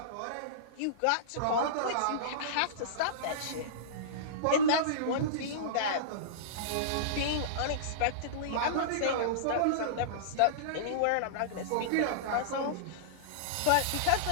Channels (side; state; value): both; different; correlation -0.03